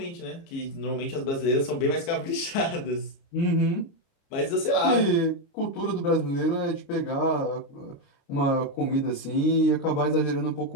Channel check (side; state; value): right; late; 30 ms